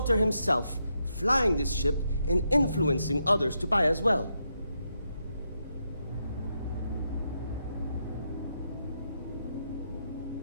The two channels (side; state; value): both; inverted; correlation -0.81